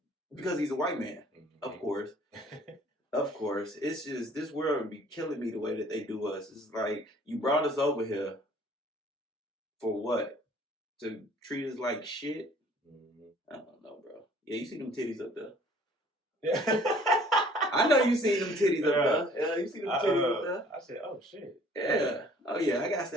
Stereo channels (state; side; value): normal; both; correlation 0.55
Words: because he's a white man, of course. Of course. It's just, this world would be killing me the way that they do us. It's like, you brought us over here for what? To treat us like shit? I don't know, bro. Yeah, you see them titties up there. I know you seen them titties up there. Yeah, you see them titties up there. I said, oh shit. Yeah. Oh yeah, I got